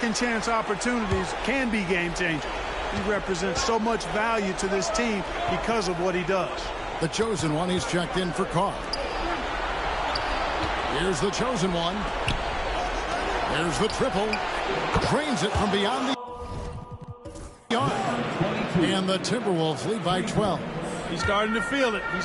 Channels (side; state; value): both; identical; correlation 1.00